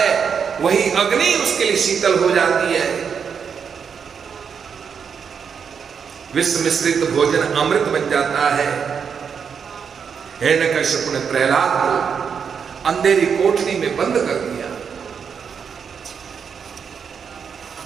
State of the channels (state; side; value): quieter; left; 6.7 dB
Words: वही अग्नि उसके लिए शीतल हो जाती है। विष मिश्रित भोजन अमृत बन जाता है। हिरण्यकश्यप ने प्रहलाद को अंधेरी कोठरी में बंद कर दिया।